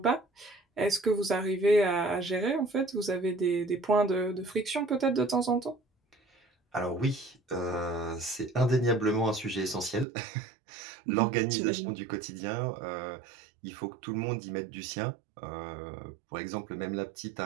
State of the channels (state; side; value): drops out; left; at 10.1 s